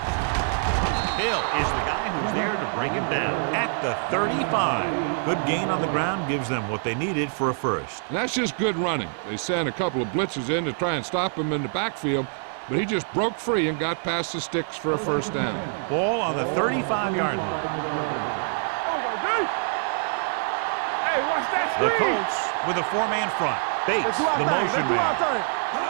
Hill is the guy who's there to break him down at the 35. Good gain on the ground gives them what they needed for a first. And that's just good running. They sent a couple of blitzes in to try and stop him in the backfield, but he just broke free and got past the sticks for a first down. Ball on the 35-yard line. The Colts with a four-man front. Bates, the motion man.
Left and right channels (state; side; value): silent; left; 61 dB below the other